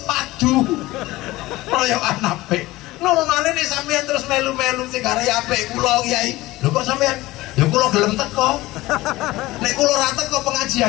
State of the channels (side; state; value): right; quieter; 18.6 dB